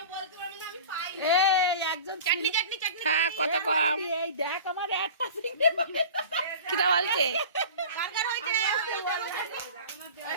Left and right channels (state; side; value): inverted; both; correlation -0.38